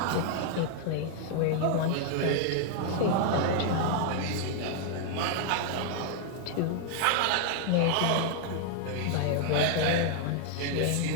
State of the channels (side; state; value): both; different; correlation 0.00